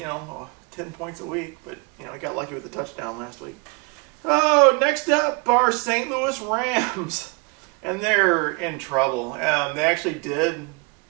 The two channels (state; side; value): quieter; left; 30.3 dB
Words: 10 points a week. But, he got lucky with the touchdown last week. Oh, next up are St. Louis Rams. And they're in trouble. They actually did